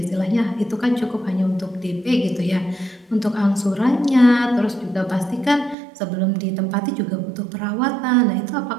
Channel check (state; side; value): drops out; left; at 5.8 s